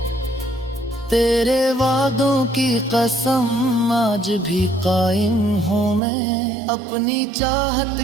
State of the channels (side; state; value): left; drops out; at 6.0 s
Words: तेरे वादों की कसम आज भी कायम हूँ मैं, अपनी चाहत